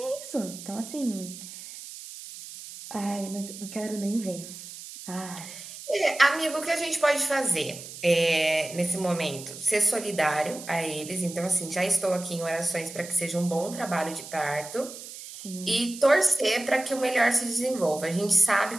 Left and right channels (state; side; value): noise; right; hiss, 13 dB below the sound